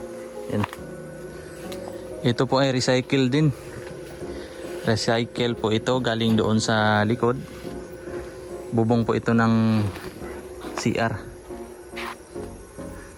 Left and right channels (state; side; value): identical; both; correlation 1.00